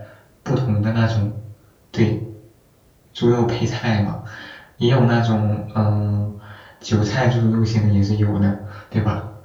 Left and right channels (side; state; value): both; identical; correlation 1.00